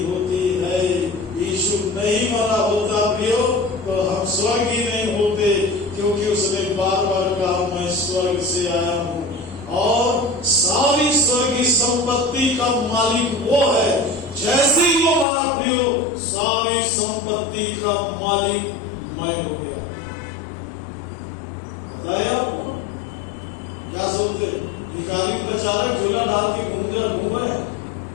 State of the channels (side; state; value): right; drops out; at 15.2 s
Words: होती है। यीशु नहीं मरा होता प्रियो, तो हम स्वर्गीय नहीं होते, क्योंकि उसने बार बार कहा, मैं स्वर्ग से आया हूँ और सारी स्वर्गीय संपत्ति का मालिक वो है। जैसे ही वो मरा प्रियो, सारी संपत्ति का मालिक मैं हो गया। बताया आपको? क्या सोचते? भिखारी प्रचारक झोला डाल के घूम रहे हैं,